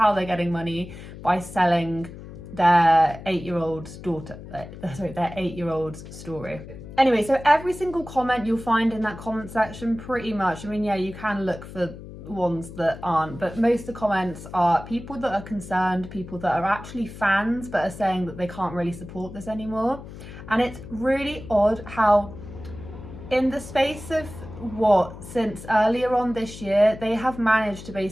they're getting money, by selling their 8-year-old's daughter, their 8-year-old's story. Anyway, so every single comment you'll find in that comment section, pretty much, I mean, yeah, you can look for ones that aren't, but most of the comments are people that are concerned, people that are actually fans but are saying that they can't really support this anymore. And it's really odd how in the space of since earlier on this year, they have managed to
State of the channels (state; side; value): noise; left; hum, 14 dB below the sound